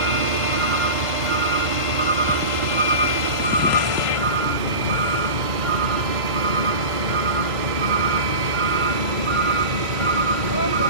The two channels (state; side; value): late; left; 1.2 ms